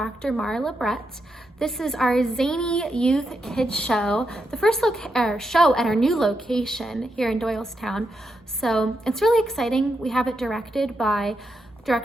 Marla Brett. This is our zany youth kids show, the first show at our new location here in Doylestown. So it's really exciting. We have it directed by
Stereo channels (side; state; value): both; normal; correlation 0.84